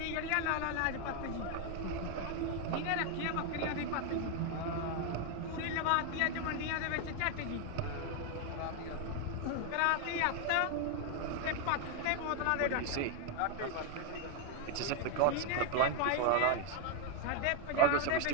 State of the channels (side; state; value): both; different; correlation 0.01